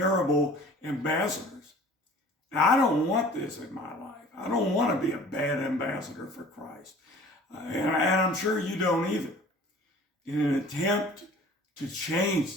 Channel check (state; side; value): normal; both; correlation 0.47